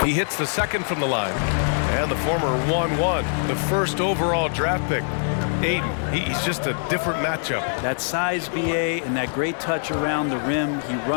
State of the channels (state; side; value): silent; right; digital silence